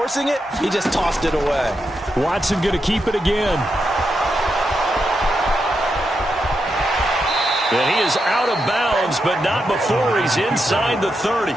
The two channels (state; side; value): normal; both; correlation 0.85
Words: it, he just tossed it away. Watson going to keep it again. And he is out of bounds, but not before he's inside the 30.